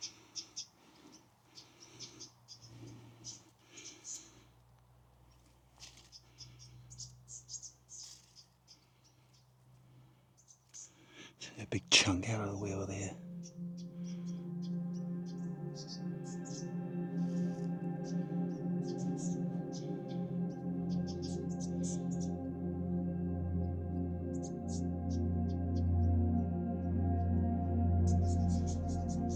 A big chunk out of the wheel there.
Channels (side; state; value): both; identical; correlation 1.00